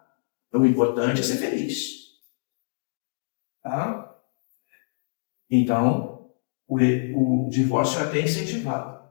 Então, o importante é ser feliz. Tá? Então, o divórcio é até incentivado.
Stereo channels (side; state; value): right; silent; digital silence